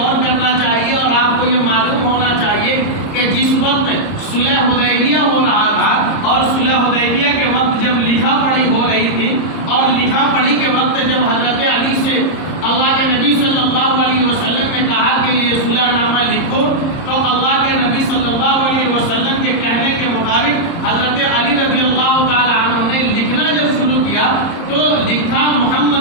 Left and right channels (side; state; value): right; late; 30 ms